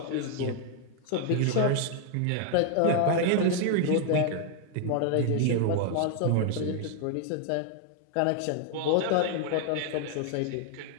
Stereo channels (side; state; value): both; different; correlation 0.00